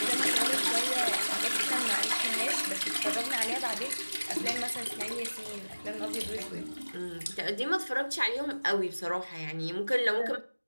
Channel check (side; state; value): both; inverted; correlation -1.00